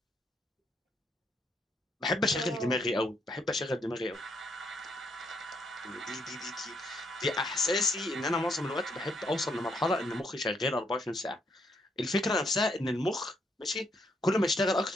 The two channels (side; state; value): both; normal; correlation 0.74